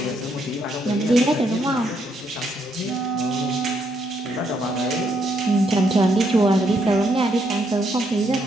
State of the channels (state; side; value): normal; both; correlation 0.74